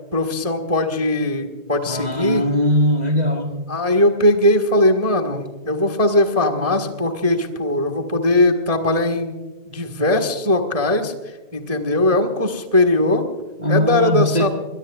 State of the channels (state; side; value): late; left; 1.7 ms